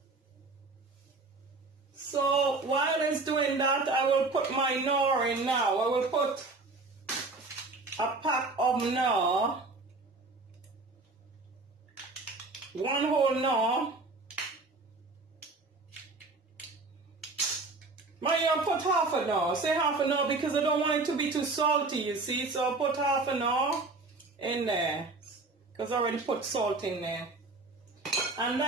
So while it's doing that, I will put my knorr in now. I will put a pack of knorr, 1 whole knorr. I'll put half a knorr. Say half a knorr because I don't want it to be too salty, you see. So I'll put half a knorr in there because I already put salt in there. And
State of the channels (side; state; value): left; quieter; 3.5 dB